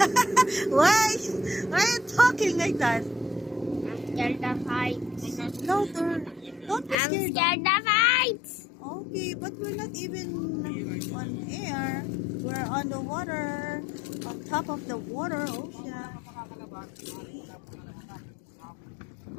Why? Why are you talking like that? I'm scared of heights. Louder. Don't be I'm scared. scared of heights. Okay, but we're not even on air. We're on the water. On top of the water ocean.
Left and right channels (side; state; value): right; drops out; at 7.0 s